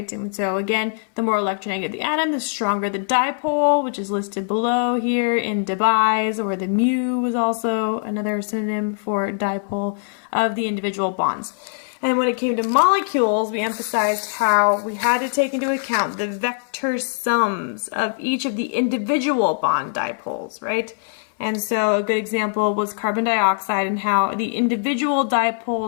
And so again, the more electronegative the atom, the stronger the dipole, which is listed below here in Debye's, or the mu was also another synonym for dipole of the individual bonds. And when it came to molecules, we emphasized how we had to take into account the vector sums of each of the individual bond dipoles, right? And so a good example was carbon dioxide and how the individual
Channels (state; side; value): silent; right; 59 dB below the other